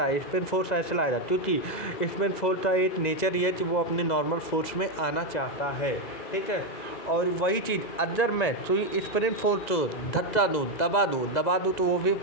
स्प्रिंग फोर्स ऐसे लाएगा, क्योंकि स्प्रिंग फोर्स का एक नेचर ये है कि वो अपने नॉर्मल फोर्स में आना चाहता है, ठीक है। और वही चीज़ अगर मैं तो स्प्रिंग फोर्स को धक्का दूँ, दबा दूँ तो वो भी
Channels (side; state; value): right; late; 2.0 ms